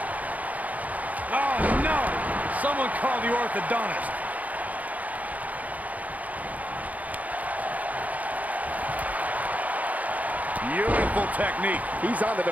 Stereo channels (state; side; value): late; left; 0.075 ms